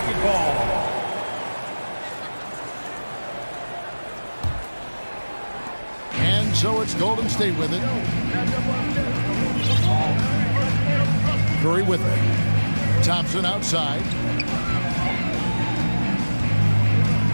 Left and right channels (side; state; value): both; inverted; correlation -1.00